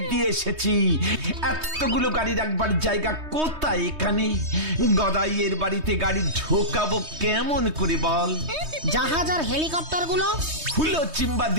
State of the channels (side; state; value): left; late; 3.2 ms